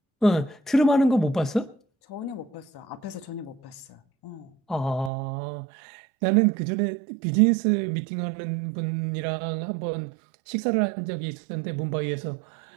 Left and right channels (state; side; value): drops out; left; at 5.1 s